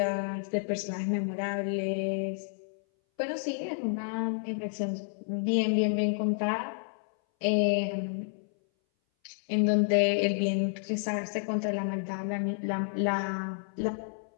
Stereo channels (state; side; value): silent; right; 58 dB below the other